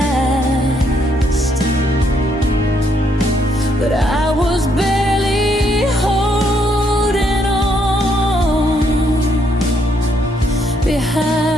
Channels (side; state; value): both; normal; correlation 0.73